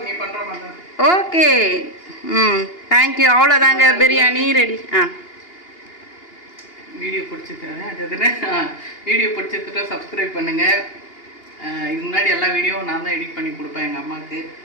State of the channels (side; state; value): right; late; 2.8 ms